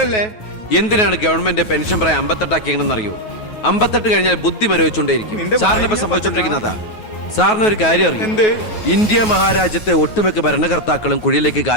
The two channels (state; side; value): late; right; 9.3 ms